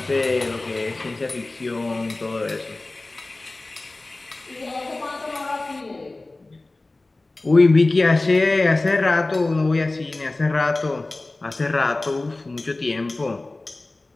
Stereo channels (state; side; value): quieter; right; 3.0 dB